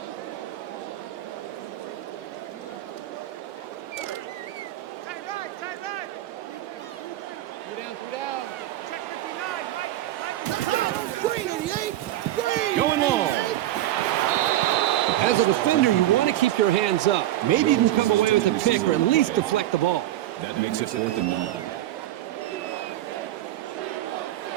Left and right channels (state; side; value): quieter; left; 14.2 dB